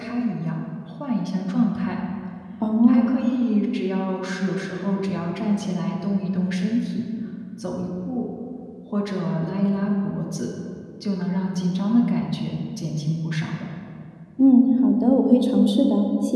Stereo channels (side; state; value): both; identical; correlation 1.00